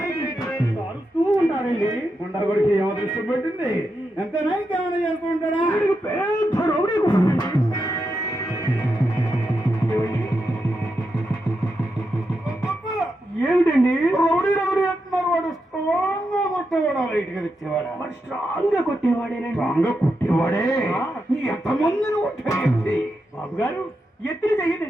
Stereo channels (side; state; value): both; normal; correlation 0.86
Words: అరుస్తూ ఉంటారండి. గుండా కొడికి ఏమో దృష్టి పెట్టింది ఎంతైనా ఇంకేమైనా చేస్తూ ఉంటాడా? పెద్ద రౌడీ కొడుకండి. ఏమిటండి రౌడీ రౌడీ అంటున్నారు? వాడు స్ట్రాంగ్ గా కొట్టేవాడు, లైట్ గా తెచ్చేవాడు. వాడు స్ట్రాంగ్ గా కొట్టేవాడేనండి. స్ట్రాంగ్ గా కొట్టేవాడే. ఎంతమందిని కొట్టాడు బాబు గారు? ఎత్తులు చెయ్యి